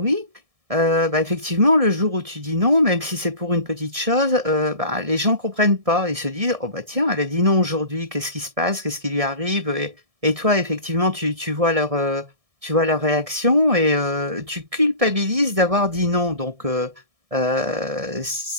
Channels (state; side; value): late; left; 1.7 ms